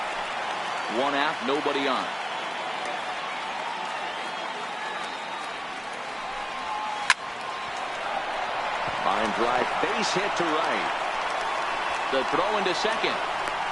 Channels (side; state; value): both; identical; correlation 1.00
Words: 1 out, nobody on. Line drive, base hit to right. The throw into second.